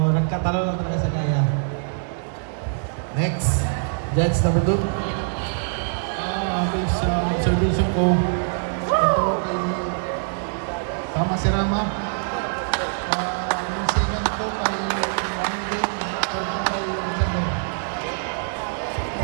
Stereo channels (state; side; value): silent; left; digital silence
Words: nagkatalo lang talaga sa gaya. Next, judge number 2. Based sa observation ko, ito ay tama si Rama. Yung second ko ay Monday, kay Alexander.